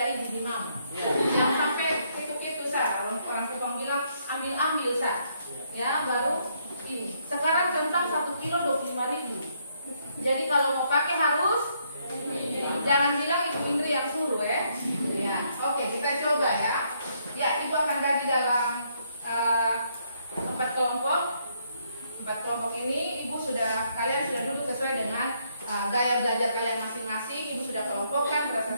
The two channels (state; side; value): inverted; both; correlation -0.72